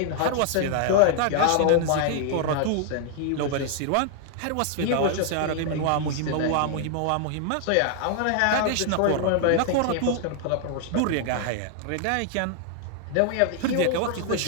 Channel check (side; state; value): both; different; correlation 0.00